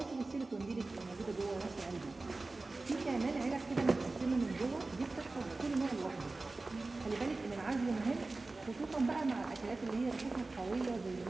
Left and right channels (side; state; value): left; quieter; 3.4 dB